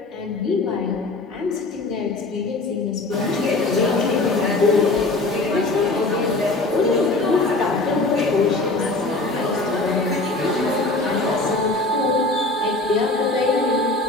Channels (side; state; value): right; quieter; 3.1 dB